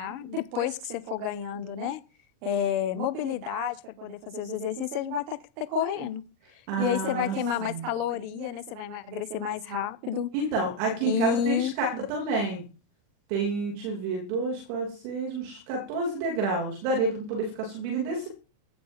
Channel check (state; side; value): late; left; 38 ms